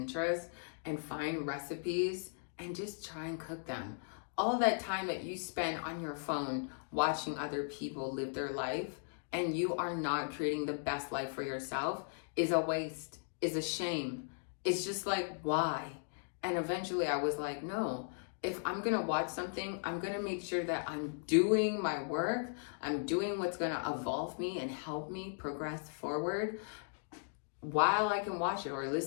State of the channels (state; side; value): silent; right; digital silence